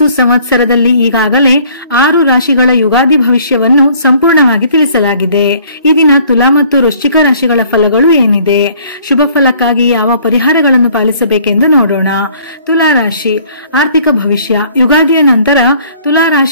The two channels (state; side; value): inverted; both; correlation -0.57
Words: ಸಂವತ್ಸರದಲ್ಲಿ ಈಗಾಗಲೇ 6 ರಾಶಿಗಳ ಯುಗಾದಿ ಭವಿಷ್ಯವನ್ನು ಸಂಪೂರ್ಣವಾಗಿ ತಿಳಿಸಲಾಗಿದೆ. ಈ ದಿನ ತುಲಾ ಮತ್ತು ವೃಶ್ಚಿಕ ರಾಶಿಗಳ ಫಲಗಳು ಏನಿದೆ, ಶುಭ ಫಲಕ್ಕಾಗಿ ಯಾವ ಪರಿಹಾರಗಳನ್ನು ಪಾಲಿಸಬೇಕೆಂದು ನೋಡೋಣ. ತುಲಾ ರಾಶಿ ಆರ್ಥಿಕ ಭವಿಷ್ಯ. ಯುಗಾದಿಯ ನಂತರ ತುಲಾ